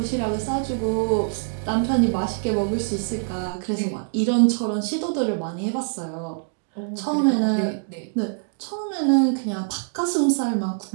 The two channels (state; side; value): silent; left; digital silence